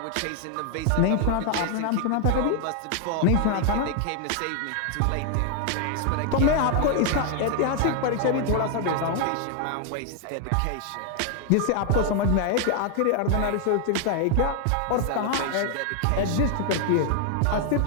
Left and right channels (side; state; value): both; different; correlation 0.00